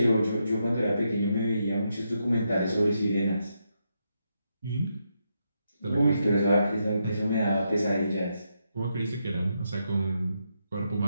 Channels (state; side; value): inverted; both; correlation -0.82